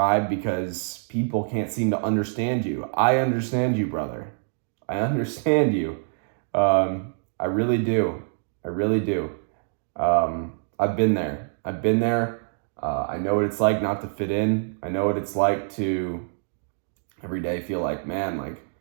because people can't seem to understand you. I understand you, brother. I understand you. I really do. I've been there. I've been there. I know what it's like not to fit in. I know what it's like to every day feel like, man, like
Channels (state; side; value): silent; left; digital silence